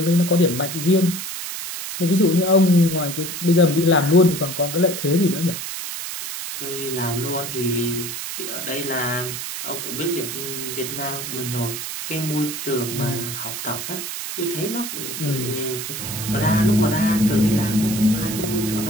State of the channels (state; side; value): noise; right; hiss, 6 dB below the sound